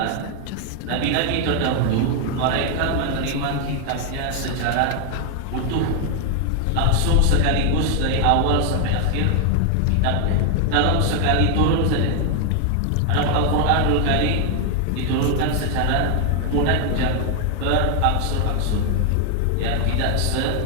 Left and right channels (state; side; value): different; both; correlation 0.00